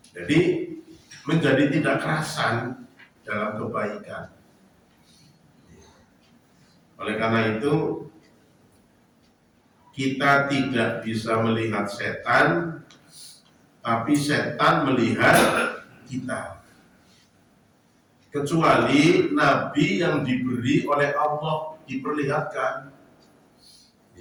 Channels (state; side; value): identical; both; correlation 1.00